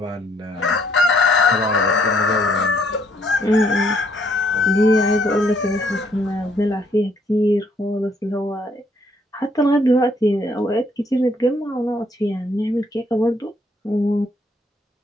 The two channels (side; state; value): both; normal; correlation 0.67